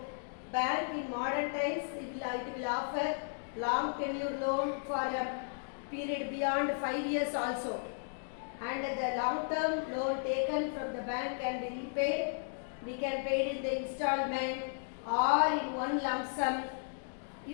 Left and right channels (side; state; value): right; silent; digital silence